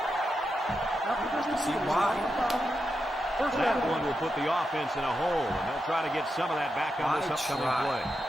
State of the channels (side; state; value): both; normal; correlation 0.87